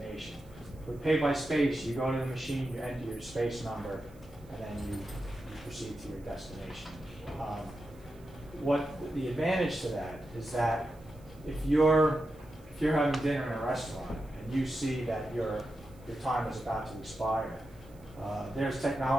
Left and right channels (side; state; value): right; noise; hiss, 29 dB below the sound